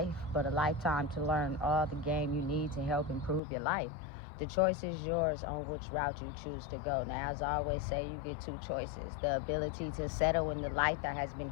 but a lifetime to learn all the game you need to help improve your life. The choice is yours on which route you choose to go. Now, as I always say, you get two choices. The ability to settle in the life that has been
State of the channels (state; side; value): drops out; right; at 3.4 s